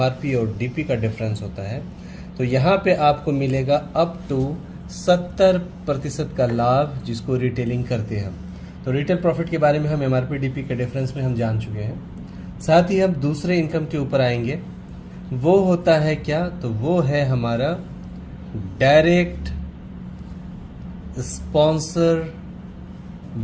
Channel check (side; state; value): both; identical; correlation 1.00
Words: और डीपी का डिफरेंस होता है। तो यहाँ पे आपको मिलेगा अप टू 70% का लाभ जिसको रिटेलिंग करते हैं हम। तो रिटेल प्रॉफिट के बारे में हम एमआरपी डीपी के डिफरेंस में हम जान चुके हैं। साथ ही हम दूसरे इनकम के ऊपर आएंगे, वो होता है क्या? तो वो है हमारा डायरेक्ट स्पॉन्सर